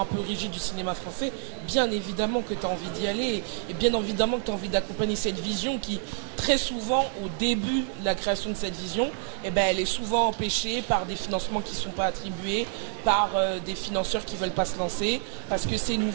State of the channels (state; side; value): silent; left; digital silence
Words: peu rigides du cinéma français, bien évidemment que tu as envie d'y aller et bien évidemment que tu as envie d'accompagner cette vision qui, très souvent, au début de la création de cette vision, elle est souvent empêchée par des financements qui ne sont pas attribués, par des financeurs qui ne veulent pas se lancer, parce que c'est